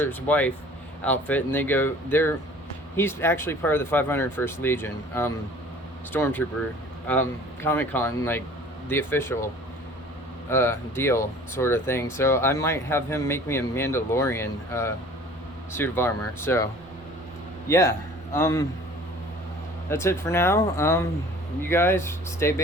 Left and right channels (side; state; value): both; normal; correlation 0.48